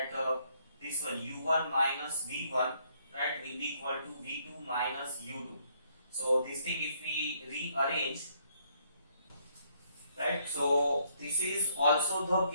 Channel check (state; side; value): inverted; both; correlation -0.70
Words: this one u1 minus v1, right, will be equal to v2 minus u2. So this thing if we rearrange, right, so this is also the